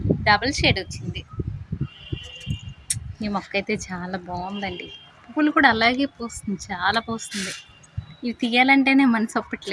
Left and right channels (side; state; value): both; identical; correlation 1.00